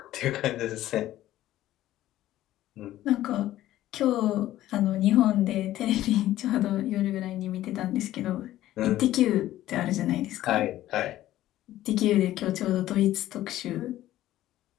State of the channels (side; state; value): right; quieter; 14.2 dB